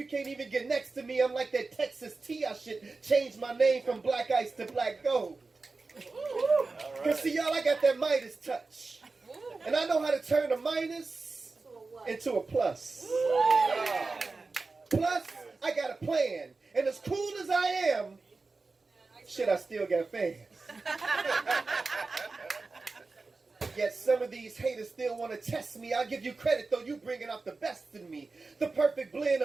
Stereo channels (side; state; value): left; quieter; 3.9 dB